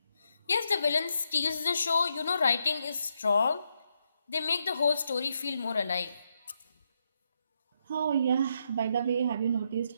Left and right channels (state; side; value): inverted; both; correlation -0.80